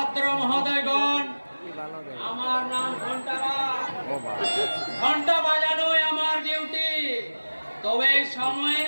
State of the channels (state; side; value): inverted; both; correlation -1.00